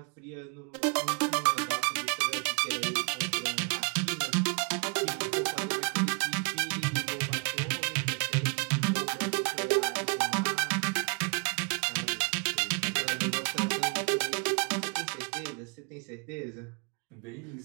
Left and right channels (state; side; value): quieter; left; 35.2 dB